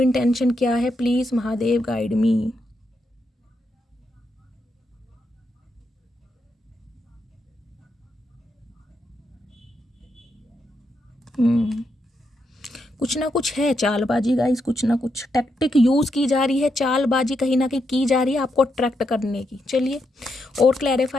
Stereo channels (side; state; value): both; normal; correlation 0.82